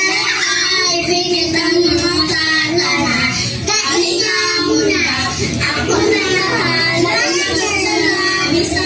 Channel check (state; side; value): identical; both; correlation 1.00